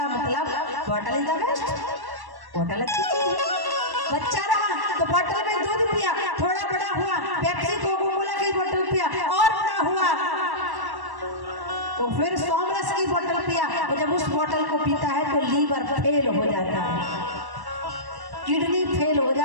मतलब bottle is the best, bottle अच्छी चीज है। बच्चा रहा तो बॉटल में दूध पिया, थोड़ा बड़ा हुआ पेप्सी कोको कोला की बोतल पिया, और बड़ा हुआ तो फिर सोमरस की बोतल पिया। और जब उस बोतल को पीता है तो लीवर फेल हो जाता है, किडनी फेल हो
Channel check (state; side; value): late; left; 1.1 ms